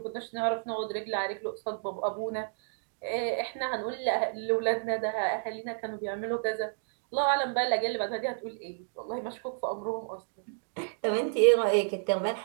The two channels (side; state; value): left; silent; digital silence